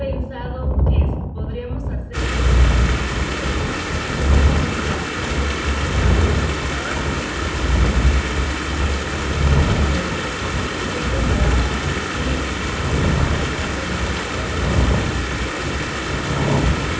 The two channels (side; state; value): both; identical; correlation 1.00